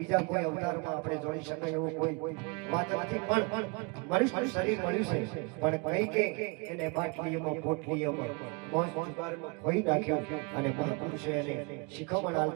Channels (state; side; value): quieter; left; 31.0 dB